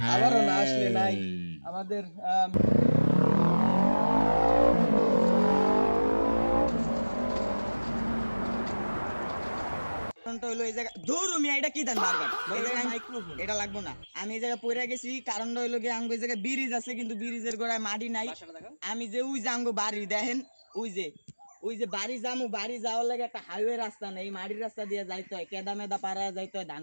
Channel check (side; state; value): both; inverted; correlation -1.00